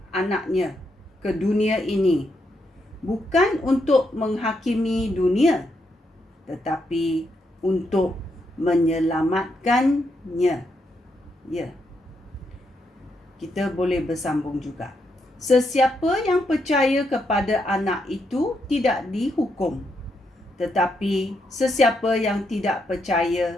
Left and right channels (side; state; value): both; normal; correlation 0.80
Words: anaknya ke dunia ini bukan untuk menghakimi dunia, tetapi untuk menyelamatkannya. Ya. Kita boleh bersambung juga. Sesiapa yang percaya kepada anak itu tidak dihukum, tetapi sesiapa yang tidak percaya